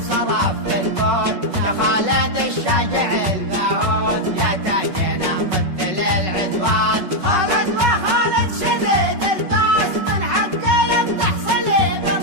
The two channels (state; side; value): late; left; 5.4 ms